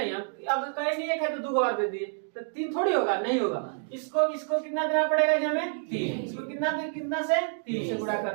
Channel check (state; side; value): silent; left; digital silence